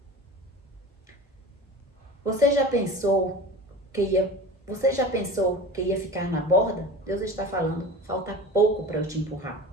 Você já pensou que ia ficar na borda? Deus está falando, falta pouco para eu te empurrar.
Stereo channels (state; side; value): normal; both; correlation 0.35